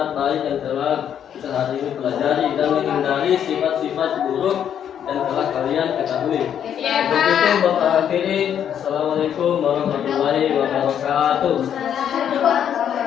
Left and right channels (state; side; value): quieter; right; 9.2 dB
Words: baik yang telah kita hari ini pelajari dan menghindari sifat-sifat buruk yang telah kalian ketahui. Untuk itu Bapak akhiri. Assalamualaikum warahmatullahi wabarakatuh.